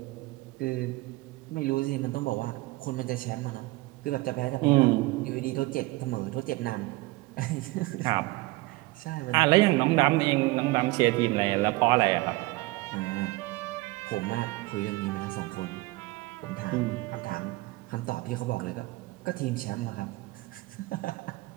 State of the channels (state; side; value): quieter; left; 21.4 dB